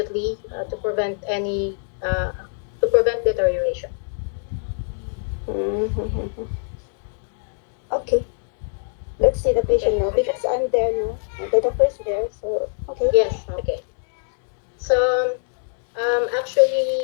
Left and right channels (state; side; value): silent; right; digital silence